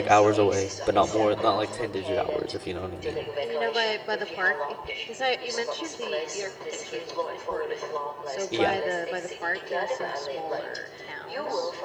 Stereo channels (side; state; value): both; identical; correlation 1.00